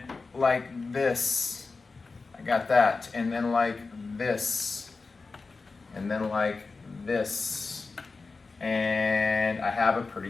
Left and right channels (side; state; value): right; quieter; 4.1 dB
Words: like this, I got that. And then like this, and then like this. And I have a pretty